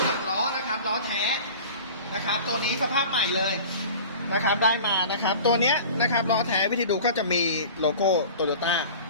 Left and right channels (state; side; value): inverted; both; correlation -0.39